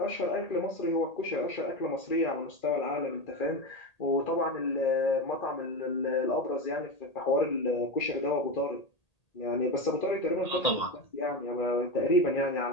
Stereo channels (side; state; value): right; late; 1.8 ms